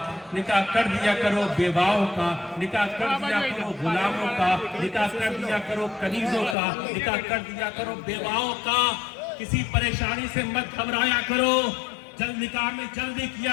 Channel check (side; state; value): right; drops out; at 6.6 s